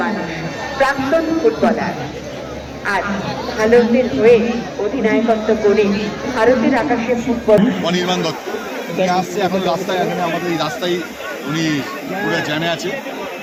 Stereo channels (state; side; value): identical; both; correlation 1.00